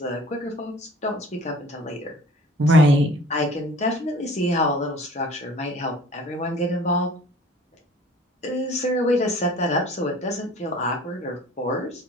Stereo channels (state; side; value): normal; both; correlation 0.48